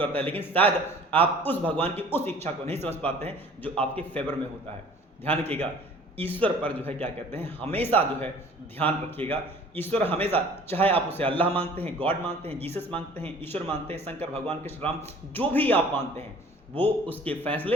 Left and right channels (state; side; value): normal; both; correlation 0.50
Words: है, लेकिन शायद आप उस भगवान की उस इच्छा को नहीं समझ पाते हैं जो आपके फेवर में होता है। ध्यान रखिएगा, ईश्वर पर जो है क्या कहते हैं, हमेशा जो है ध्यान रखिएगा। ईश्वर हमेशा, चाहे आप उसे अल्लाह मानते हैं, गॉड मानते हैं, जीसस मानते हैं, ईश्वर मानते हैं, शंकर भगवान, कृष्ण, राम, जो भी आप मानते हैं, वो उसके